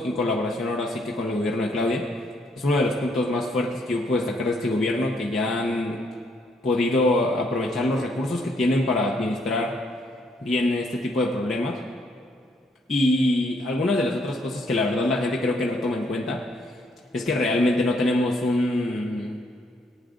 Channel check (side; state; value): both; normal; correlation 0.70